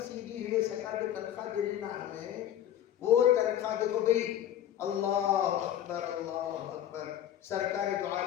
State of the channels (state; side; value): quieter; right; 11.1 dB